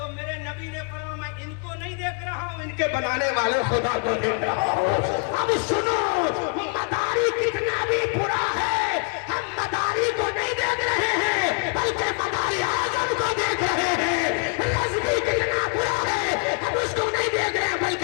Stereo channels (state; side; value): quieter; right; 38.8 dB